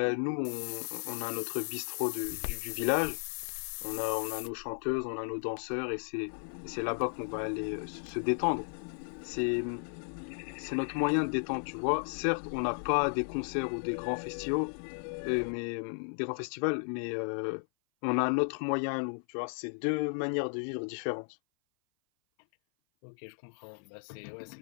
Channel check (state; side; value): silent; right; 55 dB below the other